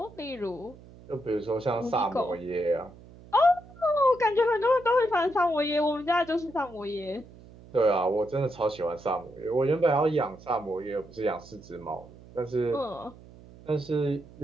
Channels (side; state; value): right; noise; hum, 21 dB below the sound